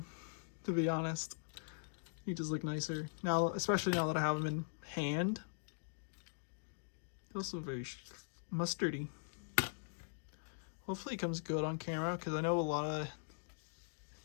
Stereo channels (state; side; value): silent; right; digital silence